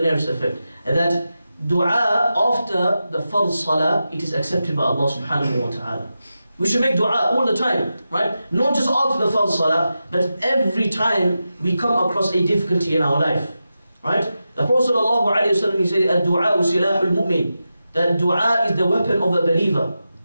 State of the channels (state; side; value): inverted; both; correlation -0.91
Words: nearest effect. That dua after the fard salah, it is accepted by Allah subhanahu wa ta'ala. We should make dua all the time, right? Not just after the fard salah, but every time we come across a difficulty in our life, right? The Prophet sallallahu alayhi wa sallam, he said, "Ad-du'a silahul mu'min." That dua is the weapon of a believer.